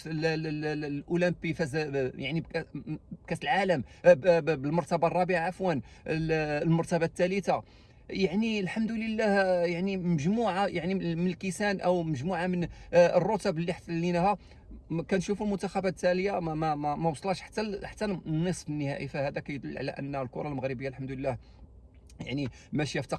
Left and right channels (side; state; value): both; identical; correlation 1.00